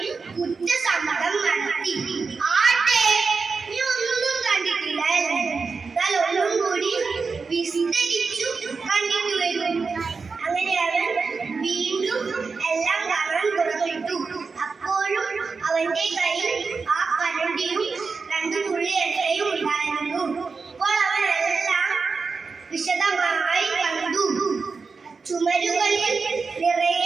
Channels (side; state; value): left; quieter; 4.7 dB